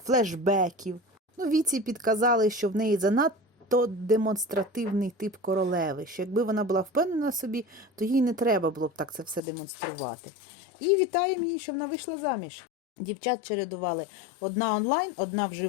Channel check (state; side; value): drops out; right; at 9.4 s